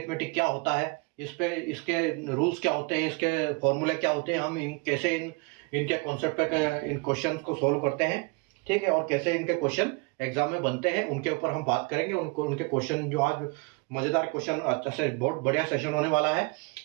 क्या होता है, इसके रूल्स क्या होते हैं, इसके फॉर्मूले क्या होते हैं, हम कैसे इनके कॉन्सेप्ट पे इन क्वेश्चन को सोल्व करते हैं। ठीक है, और कैसे इनके क्वेश्चन एग्जाम में बनते हैं, उनके ऊपर हम बात करेंगे। उनके क्वेश्चन जो आज मजेदार क्वेश्चन, अच्छा से बहुत बढ़िया सेशन होने वाला है,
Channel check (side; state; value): left; quieter; 29.9 dB